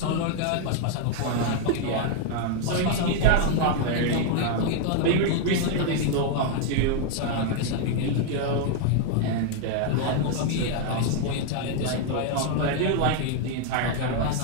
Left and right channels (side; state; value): both; different; correlation 0.00